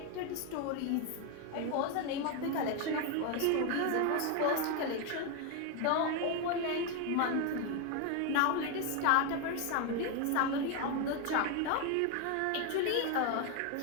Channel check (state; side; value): different; both; correlation 0.01